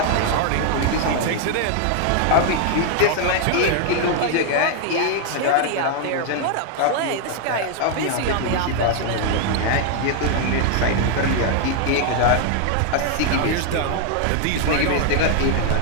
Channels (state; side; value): different; both; correlation 0.00